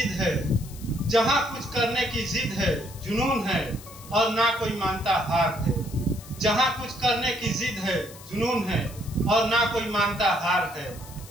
है, जहाँ कुछ करने की जिद है, जुनून है और ना कोई मानता हार है। जहाँ कुछ करने की जिद है, जुनून है और ना कोई मानता हार है।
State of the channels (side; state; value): left; noise; hiss, 18 dB below the sound